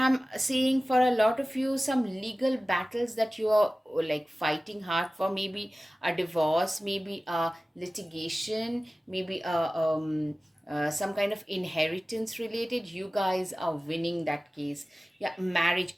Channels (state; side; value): normal; both; correlation 0.97